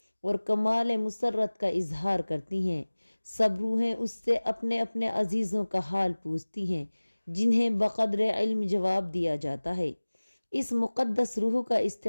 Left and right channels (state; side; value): inverted; both; correlation -1.00